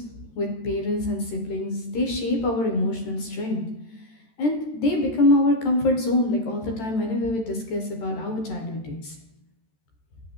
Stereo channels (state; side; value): late; right; 13 ms